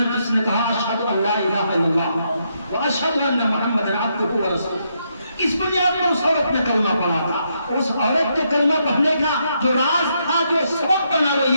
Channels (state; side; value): inverted; both; correlation -0.78